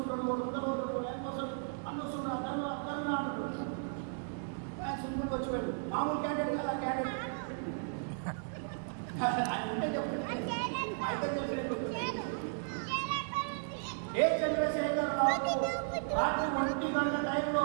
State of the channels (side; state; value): left; silent; digital silence